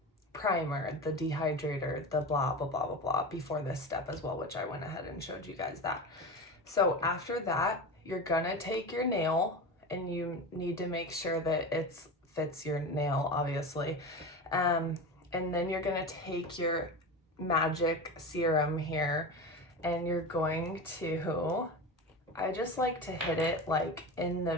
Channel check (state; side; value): normal; both; correlation 0.26